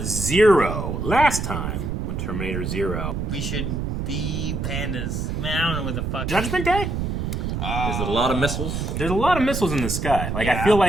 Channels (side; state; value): right; noise; rumble, 2 dB below the sound